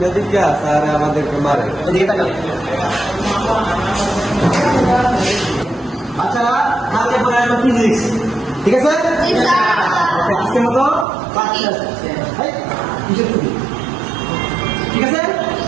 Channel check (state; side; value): drops out; left; at 11.1 s